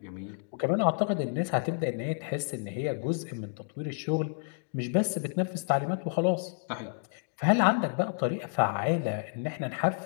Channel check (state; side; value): silent; right; digital silence